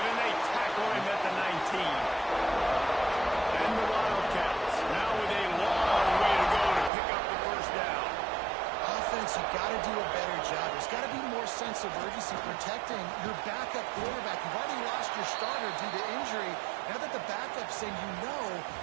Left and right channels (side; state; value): left; drops out; at 6.9 s